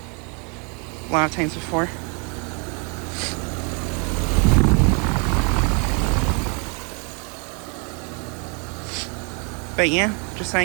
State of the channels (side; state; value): left; quieter; 35.1 dB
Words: a lot of times before. But yeah, just